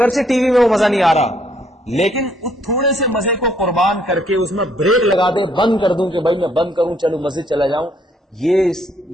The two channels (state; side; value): normal; both; correlation 0.68